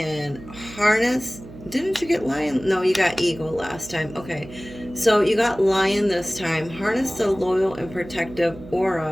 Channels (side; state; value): right; noise; hum, 16 dB below the sound